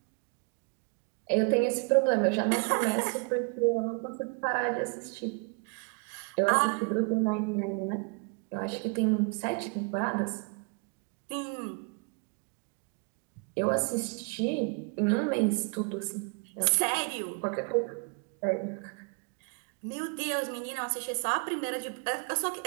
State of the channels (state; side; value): quieter; left; 34.3 dB